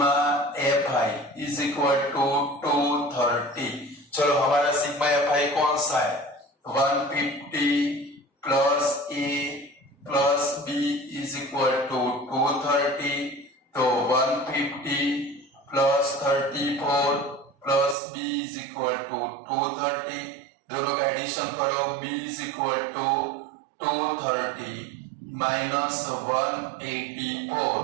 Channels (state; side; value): drops out; left; at 17.9 s